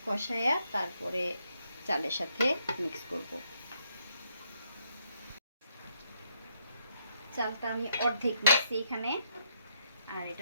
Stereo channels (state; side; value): inverted; both; correlation -0.75